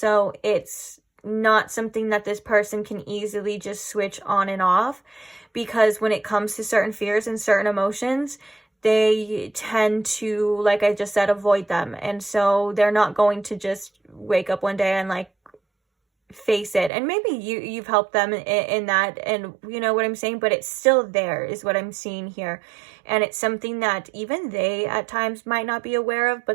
it's not something that this person can easily just switch on and off, because when it comes to certain fears and certain emotions, they tend to, like I just said, avoid them. And so they're not going to just wake up one day and face it. And maybe you've helped them in that, and you know what I'm saying, but it's still there is what I'm seeing here. And it's something that even they at times might not be aware of,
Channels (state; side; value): drops out; left; at 16.9 s